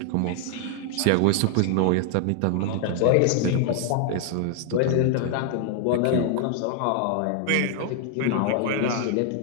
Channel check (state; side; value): different; both; correlation 0.00